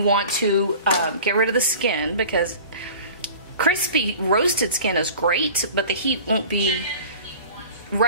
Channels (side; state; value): both; inverted; correlation -0.42